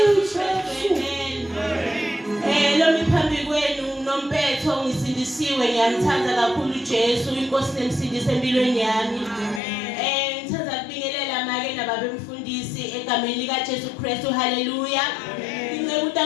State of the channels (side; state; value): right; drops out; at 9.6 s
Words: Ngiyamthanda kakhulu Jesu inkosi nemsindisi empilweni yami. Ngithanda ukubingelela make nababemfundisi egameni lika Jesu Kristu. Haleluya. Inceke